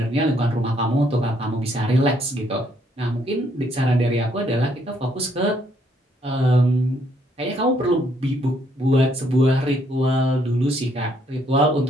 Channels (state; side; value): normal; both; correlation 0.69